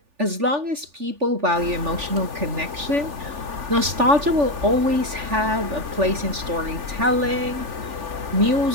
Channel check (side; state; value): left; late; 3.4 ms